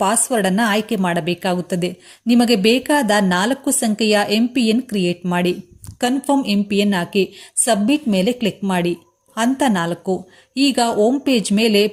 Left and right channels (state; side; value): identical; both; correlation 1.00